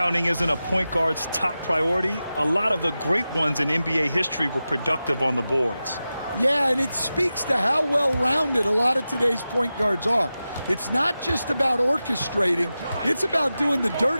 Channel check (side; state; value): both; inverted; correlation -0.93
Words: isn't a point guard's top priority, a lot of the great ones in NBA history were productive on the boards. Yeah, and it speaks to how well-rounded a lot of today's point guards are. It's not just about orchestrating, it's about doing the